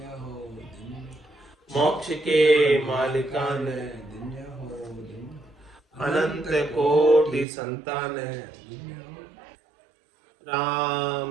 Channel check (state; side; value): drops out; left; at 7.5 s